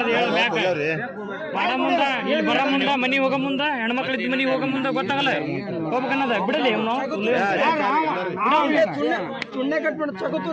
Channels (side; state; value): both; identical; correlation 1.00